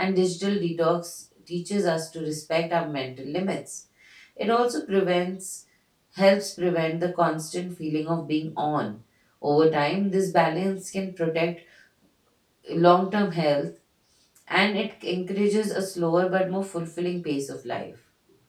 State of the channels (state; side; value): identical; both; correlation 1.00